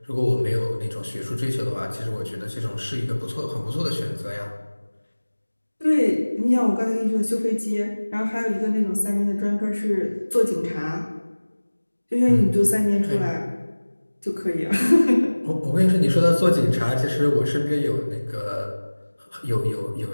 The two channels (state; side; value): inverted; both; correlation -1.00